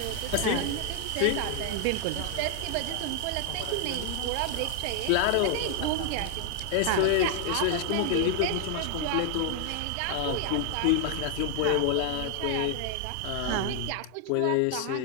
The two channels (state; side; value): different; both; correlation 0.00